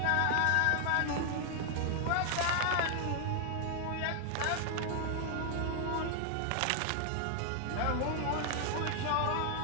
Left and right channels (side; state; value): both; different; correlation 0.00